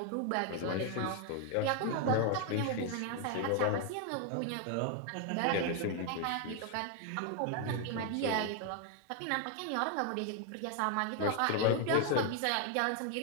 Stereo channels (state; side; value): different; both; correlation 0.00